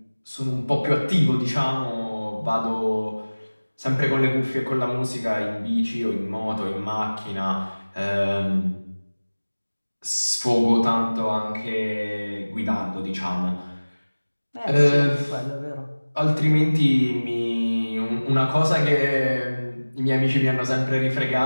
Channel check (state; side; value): inverted; both; correlation -1.00